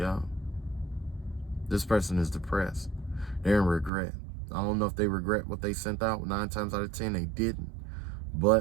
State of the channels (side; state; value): left; drops out; at 3.9 s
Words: This person is depressed. They're in regret. I don't know if they regret what they sent out. 9 times out of 10, they didn't.